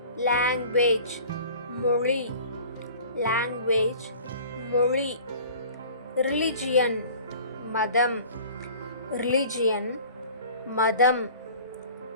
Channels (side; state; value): both; inverted; correlation -0.45